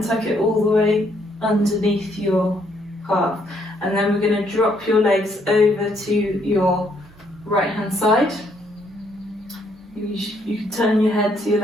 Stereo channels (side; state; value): both; normal; correlation 0.70